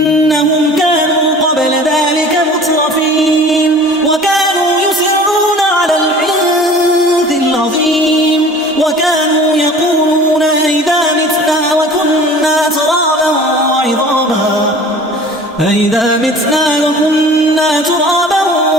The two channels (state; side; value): normal; both; correlation 0.44